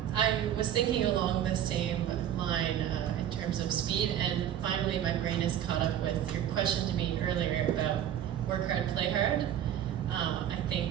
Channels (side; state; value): left; quieter; 10.6 dB